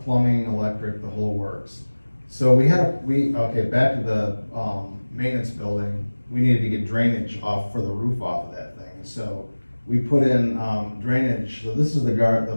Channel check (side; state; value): both; inverted; correlation -1.00